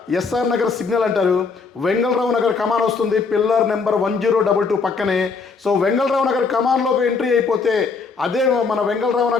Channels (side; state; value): right; quieter; 4.8 dB